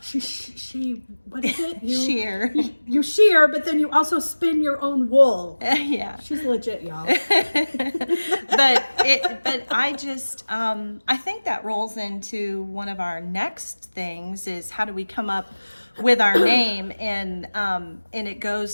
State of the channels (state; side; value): inverted; both; correlation -1.00